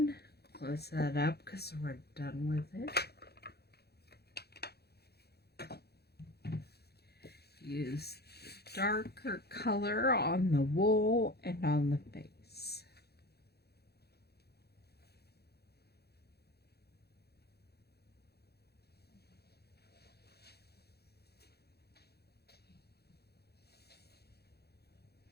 close that up because we're done with it. Use the darker color on the wool and on the face.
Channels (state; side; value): late; right; 0.47 ms